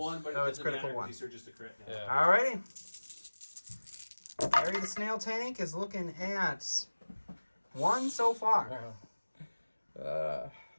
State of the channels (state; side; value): inverted; both; correlation -1.00